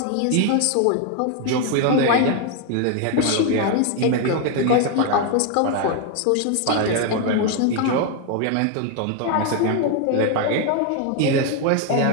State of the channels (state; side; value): different; both; correlation 0.01